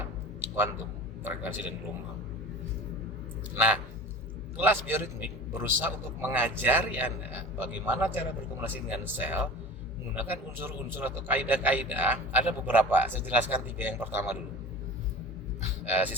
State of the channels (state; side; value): normal; both; correlation 0.37